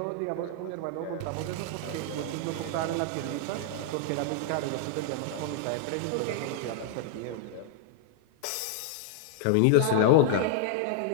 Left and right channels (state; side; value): different; both; correlation -0.01